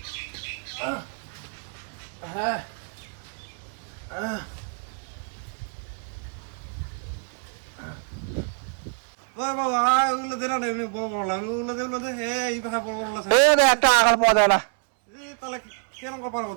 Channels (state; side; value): quieter; left; 39.2 dB